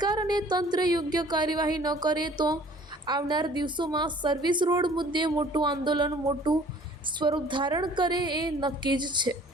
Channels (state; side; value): normal; both; correlation 0.53